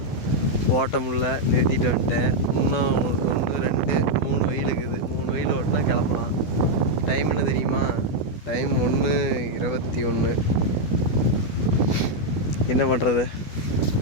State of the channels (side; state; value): right; late; 12 ms